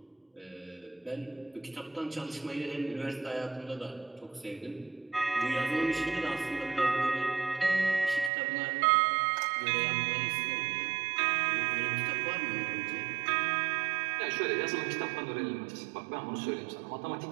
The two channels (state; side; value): drops out; left; at 8.3 s